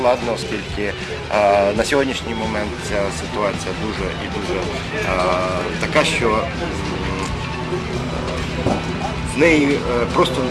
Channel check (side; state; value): both; identical; correlation 1.00